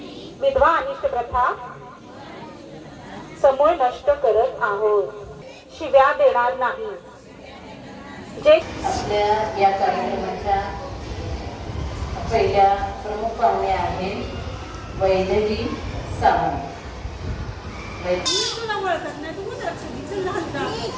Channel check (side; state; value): both; identical; correlation 1.00